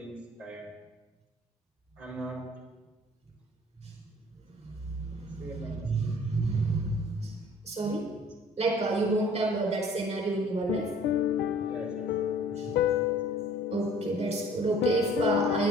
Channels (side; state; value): both; normal; correlation 0.51